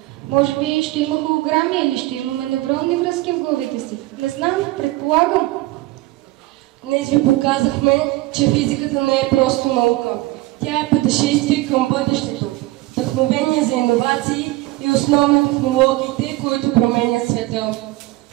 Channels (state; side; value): quieter; left; 18.9 dB